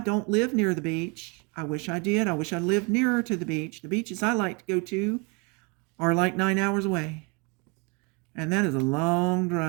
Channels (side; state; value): left; quieter; 31.5 dB